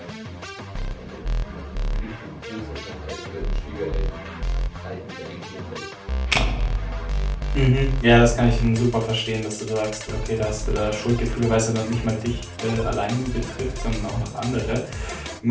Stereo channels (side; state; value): both; identical; correlation 1.00